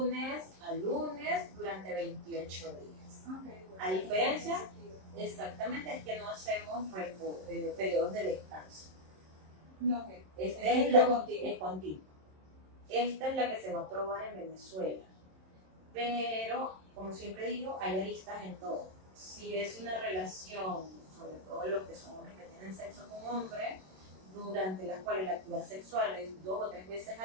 a lunes durante 28 días. Okay, bueno, A diferencia, exactamente, es que no hacemos periodos de descanso. No, okay. Este es lo la contigo. es continuo. Esta es la que se va a probar en Venezuela. Pero, como siempre digo, hay aristas en todo. Si es una relación, sobre todo los que son hombres que tienen sexo con hombres, durante las cuales la actividad sexual es 2 o 3 veces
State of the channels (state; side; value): late; left; 27 ms